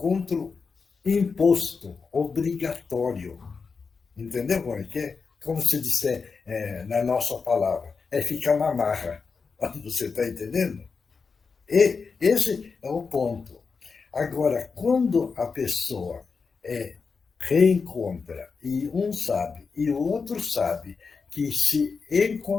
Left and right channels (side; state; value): right; quieter; 5.1 dB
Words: imposto, obrigatório. Entendeu como é que é? Como se disser na nossa palavra, é ficar na marra. Você está entendendo? E esse é o ponto. Agora, quando a pessoa reencontra, e um sabe, e o outro sabe, que se